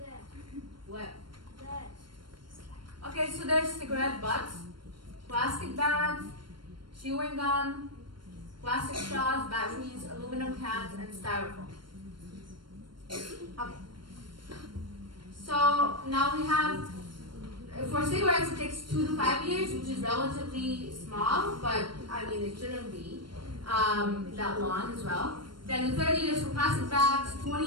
What? That. Okay, so there's cigarette butts, plastic bags, chewing gum, plastic straws, batteries, aluminum cans, and styrofoam. Okay. So now we have, for cigarettes it takes 2 to 5 years, which is relatively small, but I mean it shouldn't be that long as well. Then 30 years for plastic bags,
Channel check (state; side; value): late; left; 0.72 ms